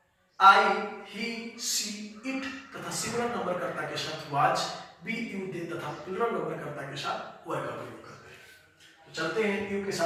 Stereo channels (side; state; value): both; identical; correlation 1.00